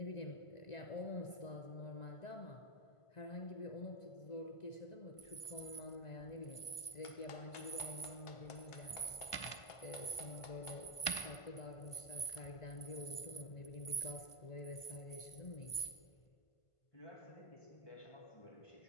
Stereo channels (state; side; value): late; right; 1.5 ms